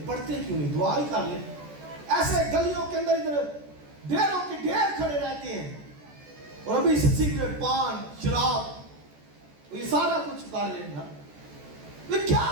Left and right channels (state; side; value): late; left; 14 ms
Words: पढ़ते क्यों नहीं, दुआ ही कर ले। ऐसे गलियों के अंदर इधर ढेरों के ढेर खड़े रहते हैं, और अभी सिगरेट, पान, शराब, ये सारा कुछ कर लेना। तो क्या